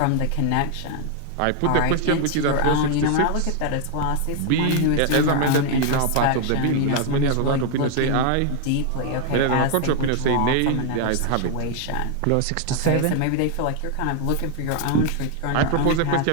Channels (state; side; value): different; both; correlation 0.00